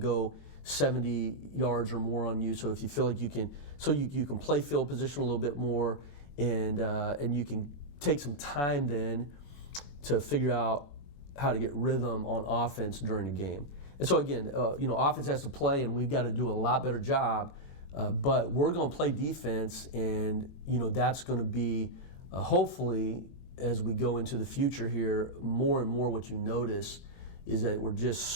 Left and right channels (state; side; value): late; right; 23 ms